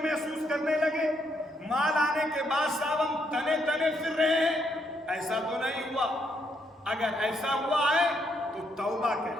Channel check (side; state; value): both; normal; correlation 0.75